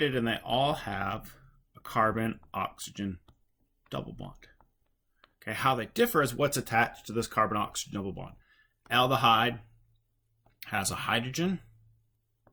and they all have a carbon-oxygen double bond. Okay, how they differ is what's attached to this carbon-oxygen double bond. Aldehyde has a hydrogen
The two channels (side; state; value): both; identical; correlation 1.00